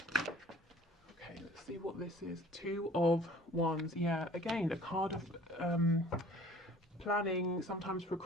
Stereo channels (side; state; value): both; normal; correlation 0.50